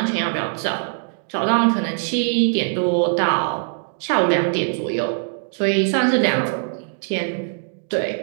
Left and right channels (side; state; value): left; silent; digital silence